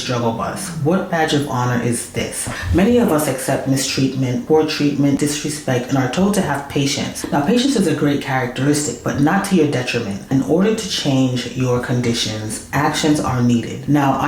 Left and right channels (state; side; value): identical; both; correlation 1.00